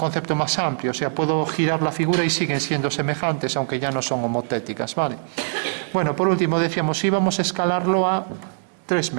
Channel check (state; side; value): silent; left; digital silence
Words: más amplio, o sea, puedo girar la figura y siguen siendo semejantes, aunque ya no son homotéticas, ¿vale? Bueno, por último decíamos, íbamos a escalarlo a 3